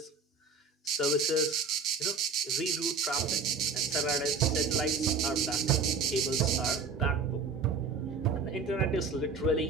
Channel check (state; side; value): quieter; left; 4.7 dB